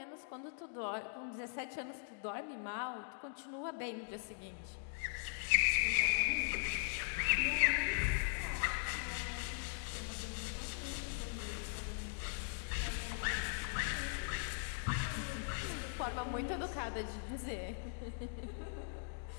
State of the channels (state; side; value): silent; right; digital silence